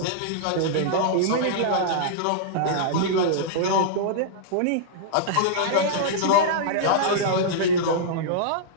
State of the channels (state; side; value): different; both; correlation -0.02